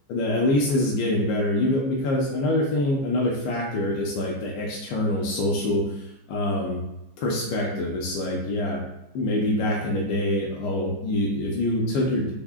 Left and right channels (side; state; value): right; late; 15 ms